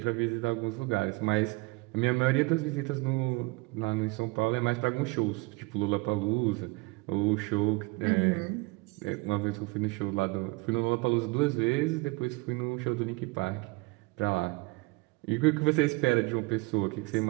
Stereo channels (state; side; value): quieter; left; 24.9 dB